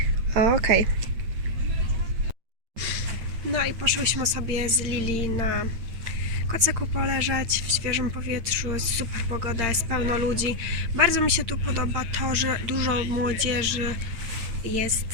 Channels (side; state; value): left; late; 8.8 ms